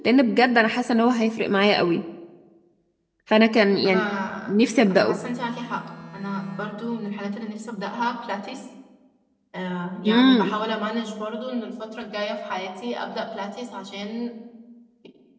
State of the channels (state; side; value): identical; both; correlation 1.00